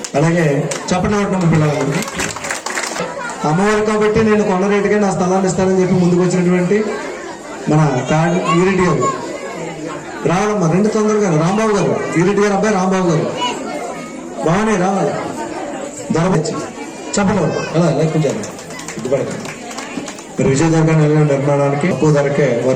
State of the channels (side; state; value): both; identical; correlation 1.00